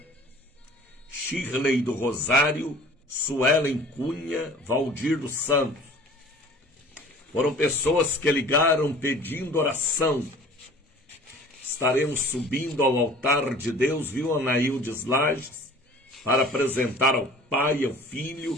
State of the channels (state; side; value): normal; both; correlation 0.46